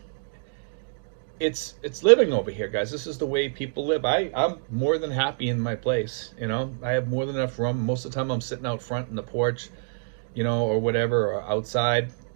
it's living over here, guys. This is the way people live. I'm more than happy in my place, you know. I have more than enough room. Most of the time I'm sitting out front in the porch, you know, or whatever, or outside.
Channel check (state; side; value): silent; left; digital silence